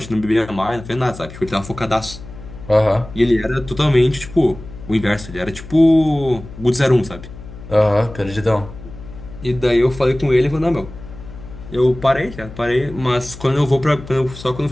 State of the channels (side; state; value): left; noise; hum, 15 dB below the sound